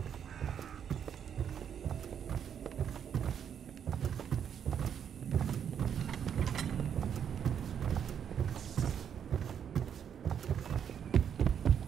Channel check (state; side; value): quieter; left; 8.3 dB